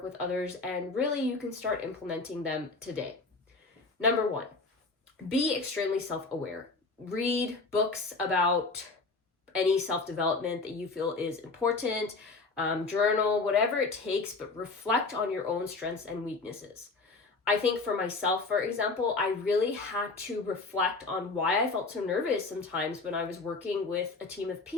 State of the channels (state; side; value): quieter; right; 3.8 dB